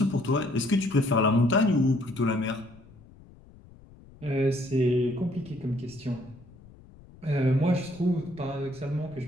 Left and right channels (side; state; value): left; noise; rumble, 23 dB below the sound